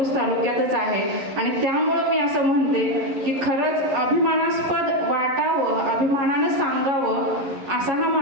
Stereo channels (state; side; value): late; left; 11 ms